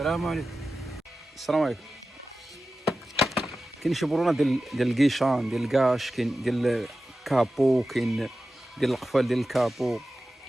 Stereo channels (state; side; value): normal; both; correlation 0.94